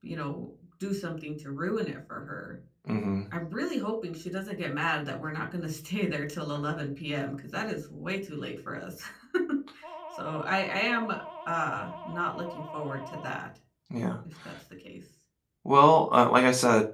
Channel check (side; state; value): both; identical; correlation 1.00